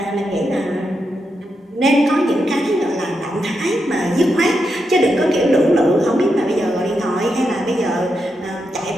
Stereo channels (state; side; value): normal; both; correlation 0.84